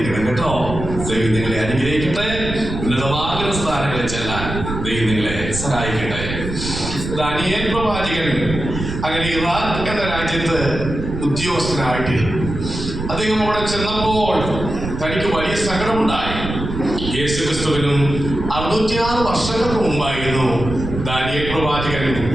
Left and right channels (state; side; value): noise; right; rumble, 6 dB below the sound